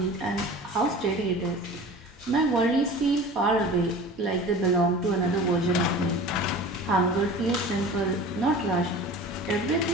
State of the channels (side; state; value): both; normal; correlation 0.38